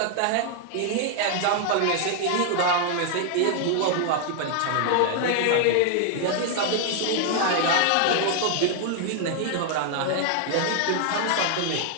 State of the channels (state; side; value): different; both; correlation 0.00